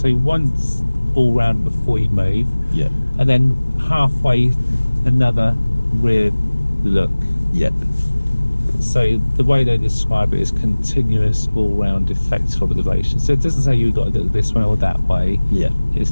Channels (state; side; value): inverted; both; correlation -1.00